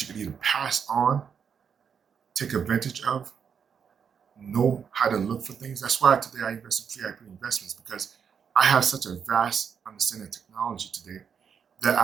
you can either pass on, take advantage of, know how to look for things. That's why today I invest in free IP investments, because I have such a vast understanding of technology today that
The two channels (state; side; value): quieter; left; 7.1 dB